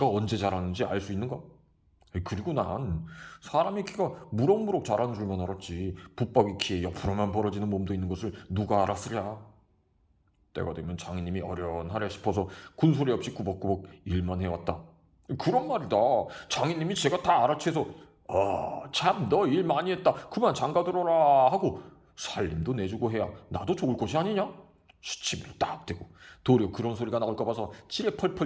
언제 자라는지 알 수 있는가? 그리고 난 사람의 키가 무럭무럭 자라는 줄만 알았지 붙박이 키에 옆으로만 벌어지는 몸도 있는 것을 누가 알았으랴. 때가 되면 장인님이 어련하랴 싶어서 군소리 없이 꾸벅꾸벅 일만 해왔다. 그런 말이다. 장인님이 제가 다 알아채서 참 너 일 많이 했다 그만 장가들어라 하고 살림도 내주고 해야 나도 좋을 것이 아니냐? 시치미로 딱 대고 도리어 그런 소리가 나올까 봐서 지레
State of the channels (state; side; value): identical; both; correlation 1.00